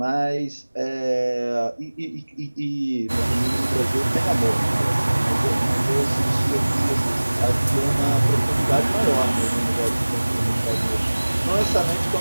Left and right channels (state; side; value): inverted; both; correlation -1.00